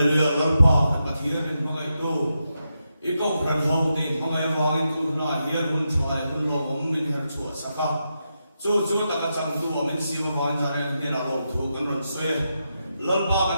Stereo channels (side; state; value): both; inverted; correlation -0.86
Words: Lalpa Pathian in mga ito Ikaw pran hau din mga wangin tu na hiyan hun chwa hun lo min her chwa saka chu ta ka chang tu min si ma wan jare ni la lo thu kan ron soe lalpa